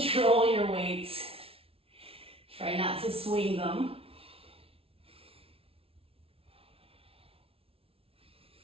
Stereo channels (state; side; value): late; left; 0.27 ms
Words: your weights. Try not to swing them.